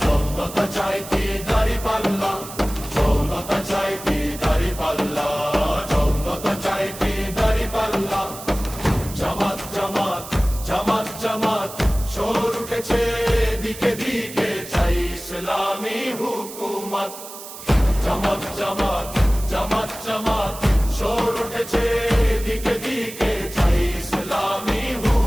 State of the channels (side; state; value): right; noise; hiss, 13 dB below the sound